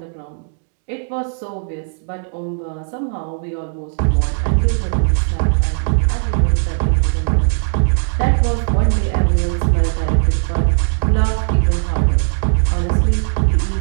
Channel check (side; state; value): left; silent; digital silence